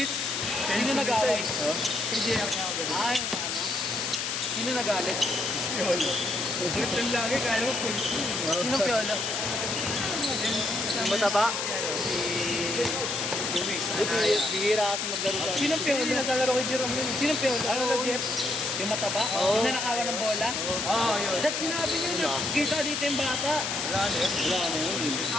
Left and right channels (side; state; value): left; noise; hiss, 1 dB below the sound